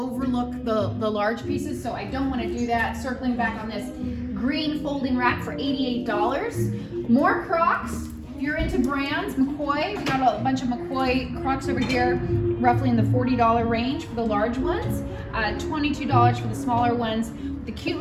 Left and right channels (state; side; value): identical; both; correlation 1.00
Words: the large pieces, so I don't want to do that. Circling back on this green folding rack for $88. More Crocs. If you're into brands, McCoy, we got a bunch of McCoy Crocs over here, roughly in the $40 range for the large ones, $22 for the smaller ones. The cute